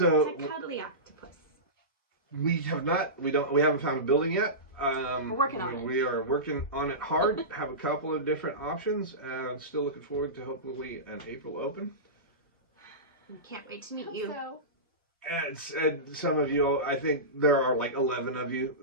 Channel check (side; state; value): both; normal; correlation -0.19